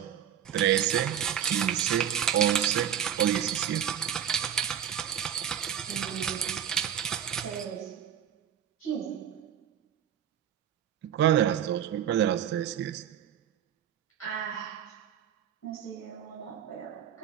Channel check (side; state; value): left; quieter; 9.6 dB